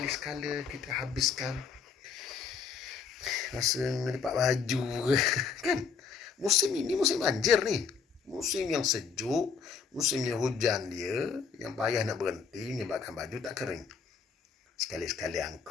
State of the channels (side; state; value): right; quieter; 5.9 dB